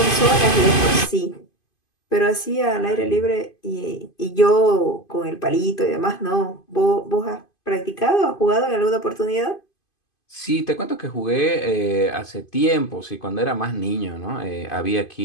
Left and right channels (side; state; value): right; late; 2.5 ms